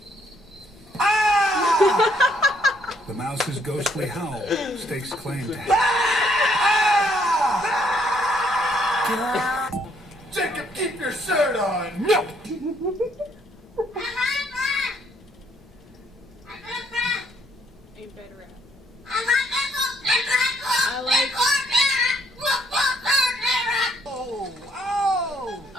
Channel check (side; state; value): both; normal; correlation 0.68